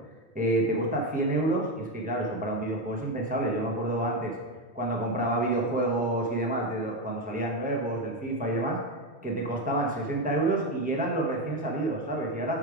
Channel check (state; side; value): normal; both; correlation 0.11